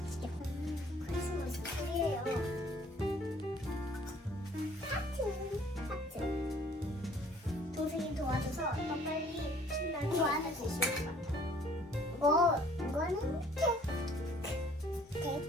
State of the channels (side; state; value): both; normal; correlation 0.57